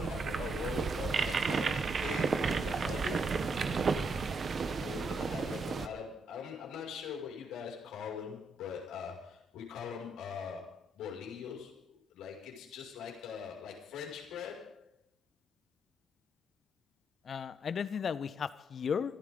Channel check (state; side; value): normal; both; correlation 0.76